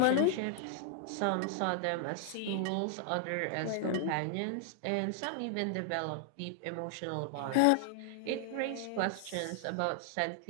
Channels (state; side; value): different; both; correlation -0.01